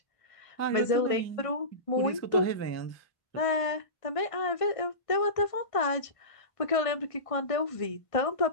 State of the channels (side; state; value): right; late; 1.5 ms